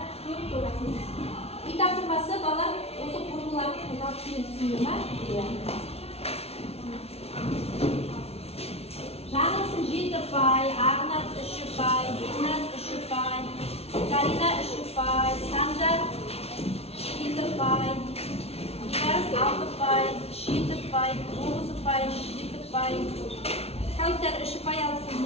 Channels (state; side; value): late; right; 0.30 ms